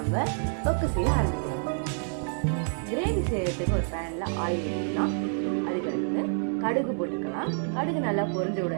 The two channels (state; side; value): silent; left; 59 dB below the other